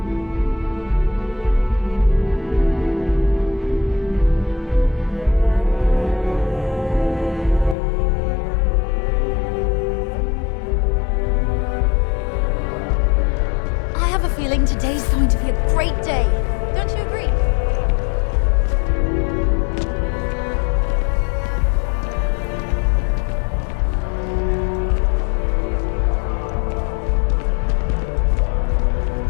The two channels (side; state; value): right; drops out; at 7.8 s